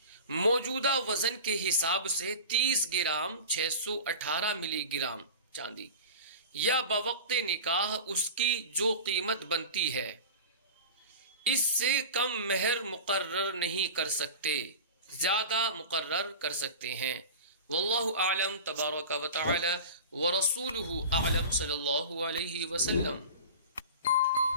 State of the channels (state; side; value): inverted; both; correlation -0.33